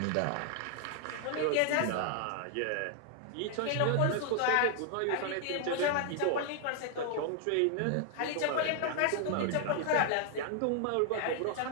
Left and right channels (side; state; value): both; different; correlation 0.00